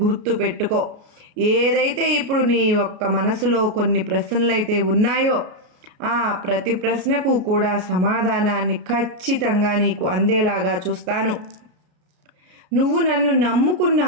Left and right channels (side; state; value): left; late; 33 ms